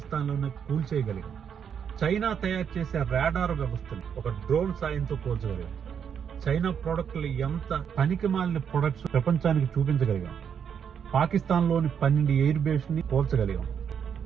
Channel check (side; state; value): left; quieter; 7.7 dB